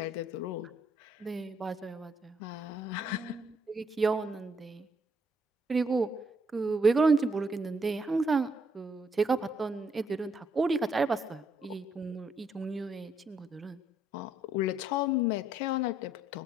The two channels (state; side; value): normal; both; correlation 0.72